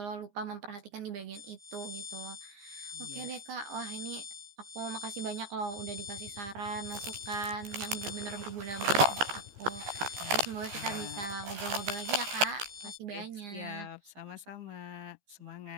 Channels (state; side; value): late; left; 15 ms